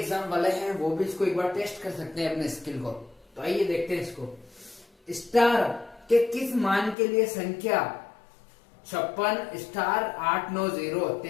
वाले हैं वो भी इसको एक बार टेस्ट कर सकते हैं अपने स्किल को। तो आइए देखते हैं इसको। स्टार के किस मान के लिए संख्या 56 स्टार 890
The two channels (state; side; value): drops out; right; at 7.0 s